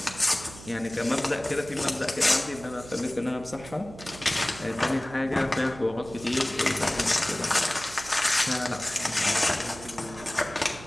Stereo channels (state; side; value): noise; right; hum, 16 dB below the sound